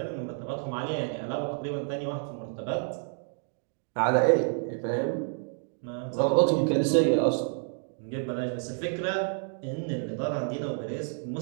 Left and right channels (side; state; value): left; silent; 56 dB below the other